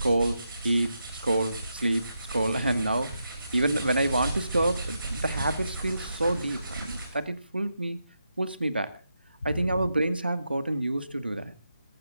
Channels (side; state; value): both; inverted; correlation -0.85